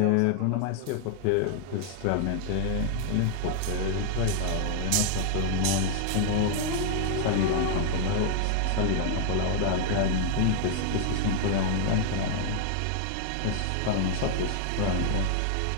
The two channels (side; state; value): both; different; correlation 0.00